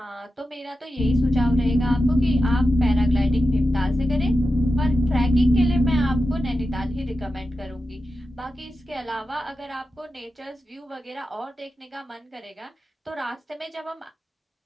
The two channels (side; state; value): both; normal; correlation 0.91